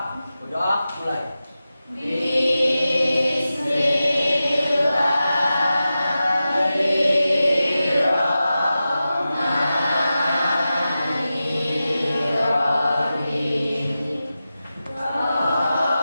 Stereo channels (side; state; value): both; inverted; correlation -0.93